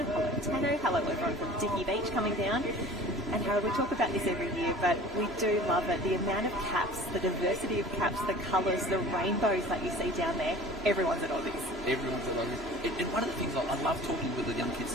Hello, Tano. Hello, everyone from Dicky Beach coming down. And Harold, we talk about this every year, but we do love it. The amount of caps, the diversity of caps, the colours, the rainbows that you see down there. Everyone's at Aussies. Everyone's at Aussies. And one of the things I love talking with the young kids,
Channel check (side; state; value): both; normal; correlation 0.43